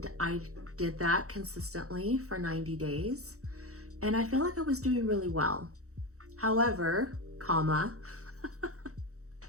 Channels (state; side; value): late; left; 0.65 ms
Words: I did that consistently for 90 days, and I feel like I was doing really well. However,